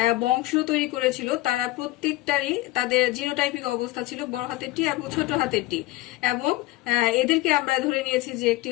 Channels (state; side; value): quieter; right; 18.5 dB